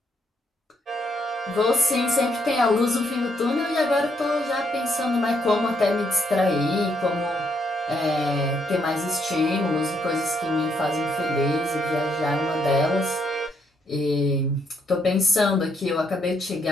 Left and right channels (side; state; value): both; normal; correlation 0.74